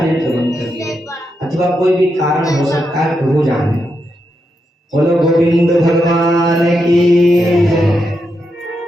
बंद कर दिया। अथवा कोई भी कारण हो सकता है, प्रभु जाने। बोलो गोविंद भगवान की।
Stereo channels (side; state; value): both; normal; correlation 0.84